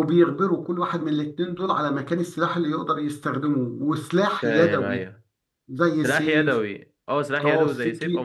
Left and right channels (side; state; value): both; identical; correlation 1.00